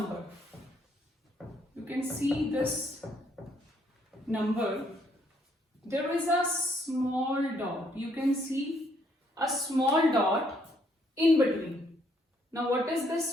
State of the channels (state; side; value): normal; both; correlation 0.69